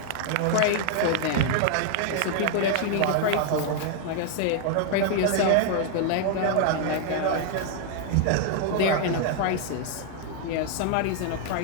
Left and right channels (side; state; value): both; different; correlation 0.00